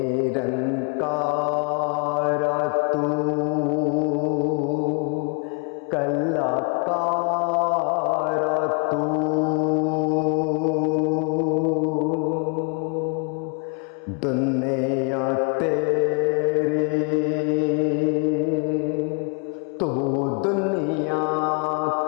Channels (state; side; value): quieter; right; 35.0 dB